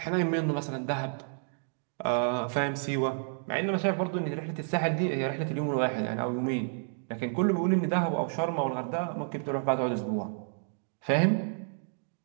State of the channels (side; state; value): left; silent; digital silence